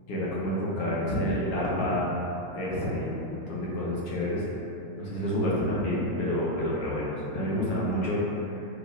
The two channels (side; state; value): right; late; 8.4 ms